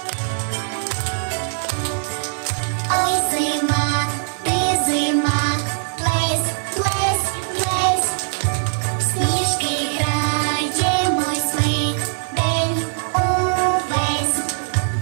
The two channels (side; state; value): left; silent; 65 dB below the other